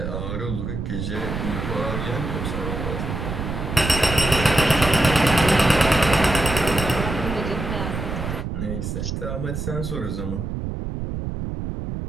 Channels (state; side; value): noise; right; rumble, 4 dB below the sound